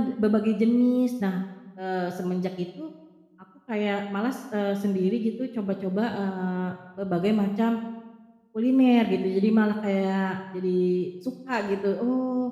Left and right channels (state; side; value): identical; both; correlation 1.00